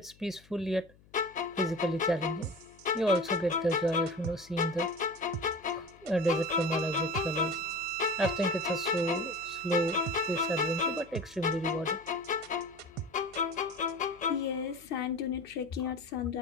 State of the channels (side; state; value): left; noise; hum, 27 dB below the sound